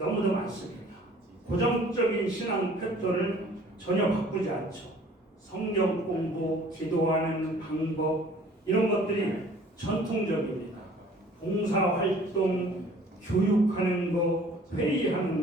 많습니다. 고정적인 신앙 패턴을 전혀 바꾸지 않죠. 성경 공부, 기도하는 방법 이런 것들이 전통적입니다. 봉사활동, 교육하는 것,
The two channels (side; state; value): both; normal; correlation 0.52